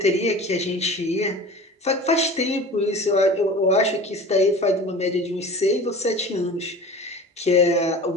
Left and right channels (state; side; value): normal; both; correlation 0.38